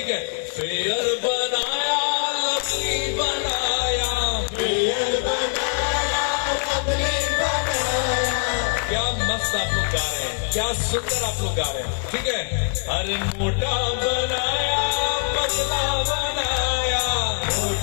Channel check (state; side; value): silent; right; 63 dB below the other